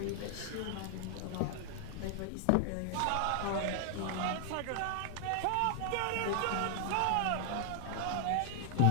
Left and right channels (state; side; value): different; both; correlation 0.00